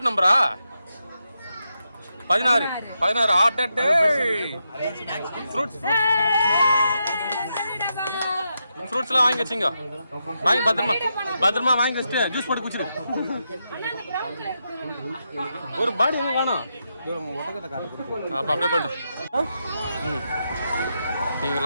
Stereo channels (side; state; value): both; inverted; correlation -0.84